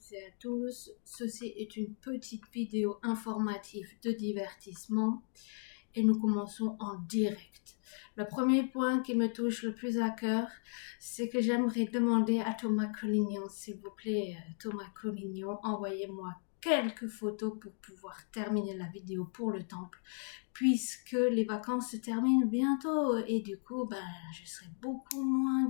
et à tous. Ceci est une petite vidéo informative de divertissement et nous commençons en direct. Le premier point qui me touche le plus à cœur, c'est que j'aimerais demander à Thomas Collignon, s'il vous plaît, Thomas Collignon, envoyez-moi quelques photos pour pouvoir terminer la vidéo pour le temple, puisque les vacances se terminent bientôt et du coup, je serai beaucoup moins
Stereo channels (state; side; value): silent; right; 54 dB below the other